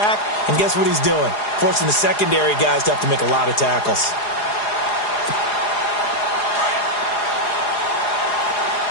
and guess what he's doing? Forcing the secondary guys to have to make a lot of tackles.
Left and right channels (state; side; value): late; right; 4.8 ms